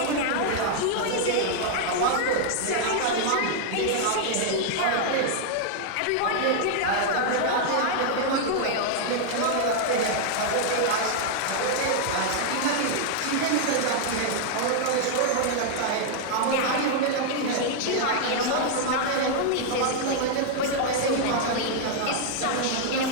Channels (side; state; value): both; different; correlation 0.00